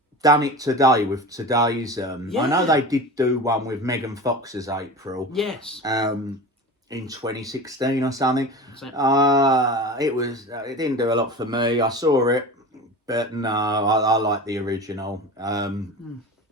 done it today with today's... I know they did do one with Megan Fox's April. Yes. In 2016 or something. It didn't do a lot for me. I saw it, but no, I like the original. I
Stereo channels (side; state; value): both; normal; correlation 0.31